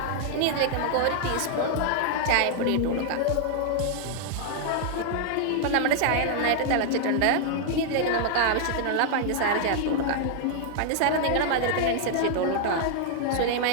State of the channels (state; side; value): different; both; correlation 0.00